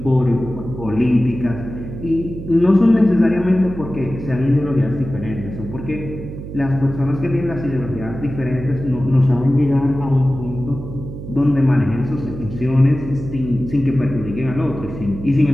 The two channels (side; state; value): right; noise; hum, 10 dB below the sound